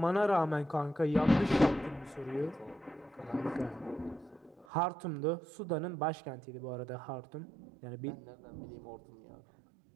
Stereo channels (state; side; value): drops out; left; at 4.7 s